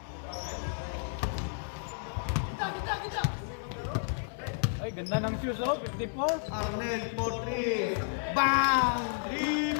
Ay, ganda ng shoes oh. 54. Arnel for 3. Bang!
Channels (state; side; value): silent; right; digital silence